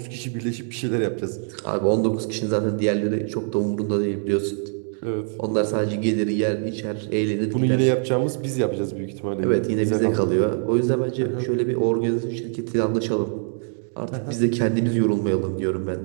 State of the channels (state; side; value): silent; left; 63 dB below the other